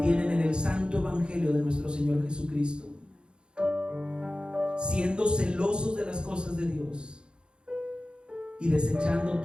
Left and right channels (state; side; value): late; left; 0.052 ms